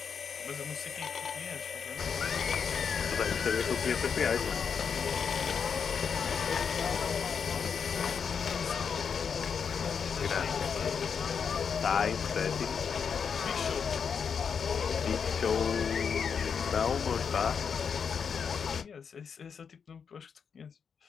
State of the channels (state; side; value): quieter; right; 6.5 dB